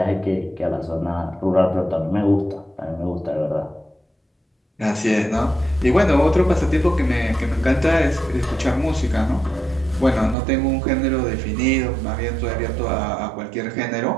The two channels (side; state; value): left; drops out; at 10.4 s